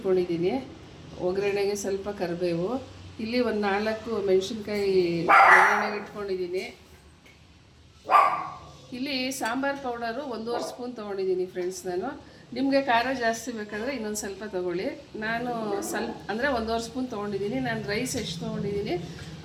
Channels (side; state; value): both; identical; correlation 1.00